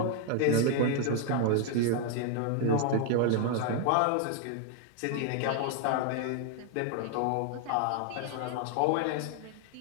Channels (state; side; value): different; both; correlation 0.00